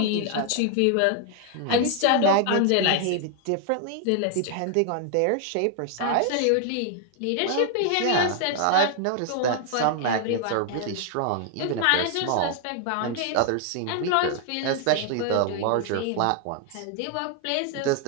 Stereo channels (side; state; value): both; different; correlation 0.00